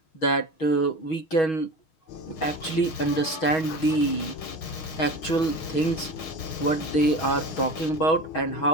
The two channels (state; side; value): late; right; 6.3 ms